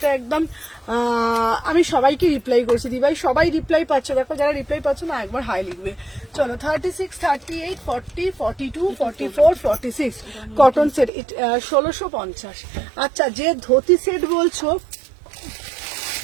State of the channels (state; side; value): drops out; left; at 11.1 s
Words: একদম আমি সবাইকে রিপ্লাই করছি দিভাই, সবাই রিপ্লাই পাচ্ছে, দেখো যারা রিপ্লাই পাচ্ছে না একবার হাই লিখবে। চলো 36, 38, 40, 42, 44, 46 কটন সেট, 1650। আচ্ছা যে ধুতি সেট বলছো,